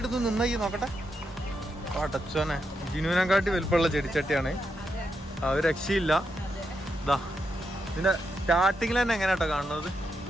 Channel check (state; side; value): normal; both; correlation 0.83